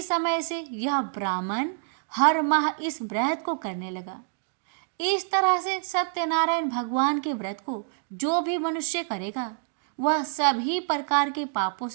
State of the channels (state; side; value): silent; left; digital silence